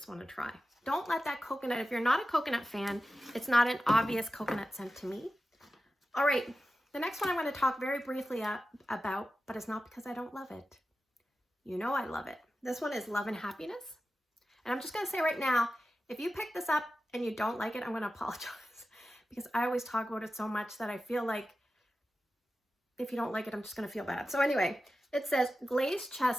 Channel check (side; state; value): both; normal; correlation 0.93